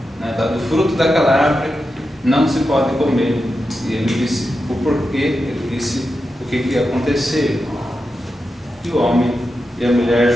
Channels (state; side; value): normal; both; correlation 0.89